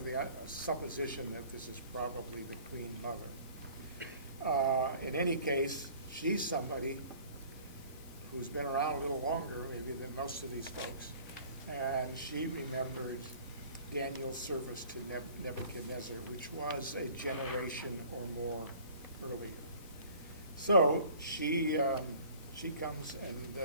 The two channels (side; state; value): both; inverted; correlation -0.50